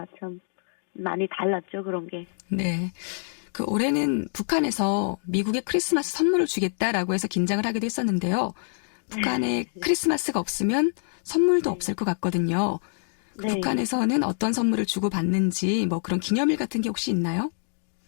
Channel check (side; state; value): right; silent; digital silence